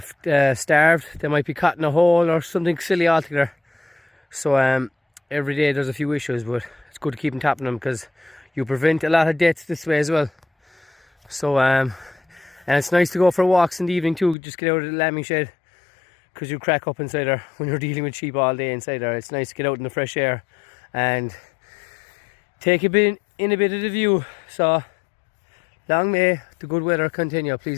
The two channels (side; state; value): right; drops out; at 14.4 s